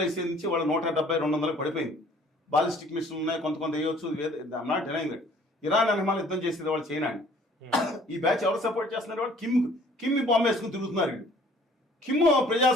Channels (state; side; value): normal; both; correlation 0.55